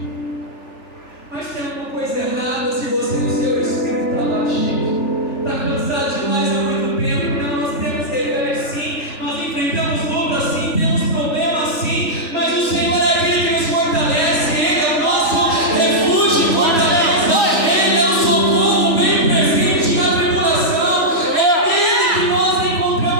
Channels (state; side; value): late; right; 3.4 ms